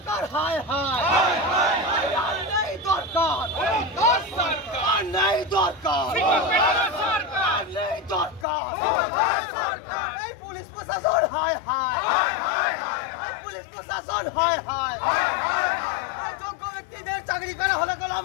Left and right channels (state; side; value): drops out; right; at 8.5 s